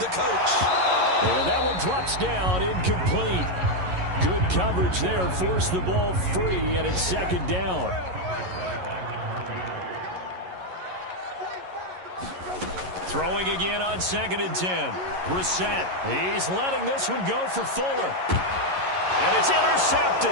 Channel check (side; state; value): left; late; 11 ms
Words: coach. And that one drops down, incomplete. Good coverage there, forced the ball free, and it's 2nd down. Throwing again on 2nd and 10. Brissett, he's letting this one go for Fuller. And it's